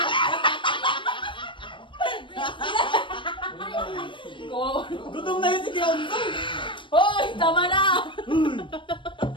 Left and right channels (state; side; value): late; right; 0.24 ms